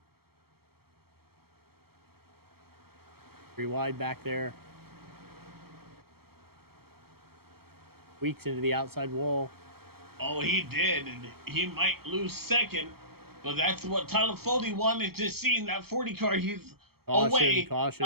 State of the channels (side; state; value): left; late; 0.95 ms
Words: 3 wide back there. Weeks into the outside wall. Oh, he did, and he might lose second, but that's what Tyler Foley wanted to see in that 40 car. He's away.